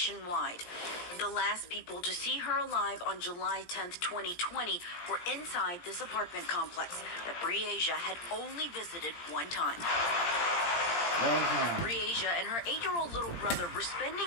The last people to see her alive on July 10th, 2020 were inside this apartment complex that Breaisia had only visited one time. Breaisia and her 8-year-old little brother were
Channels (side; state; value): right; late; 17 ms